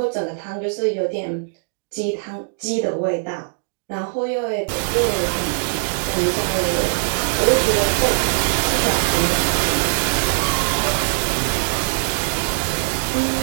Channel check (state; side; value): silent; left; digital silence